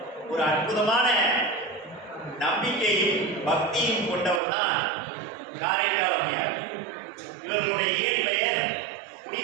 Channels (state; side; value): drops out; left; at 4.4 s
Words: ஒரு அற்புதமான நம்பிக்கையும் பக்தியும் கொண்டவர் தான் காரைக்கால் அம்மையார். இவர்களுடைய இயற்பெயர்